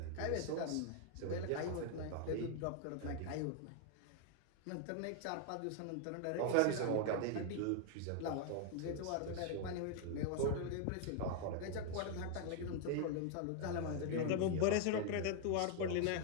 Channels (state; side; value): different; both; correlation 0.00